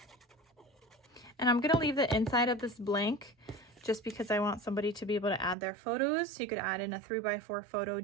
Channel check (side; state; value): left; drops out; at 5.6 s